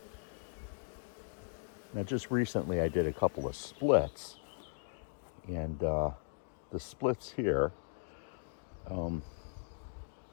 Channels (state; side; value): silent; right; digital silence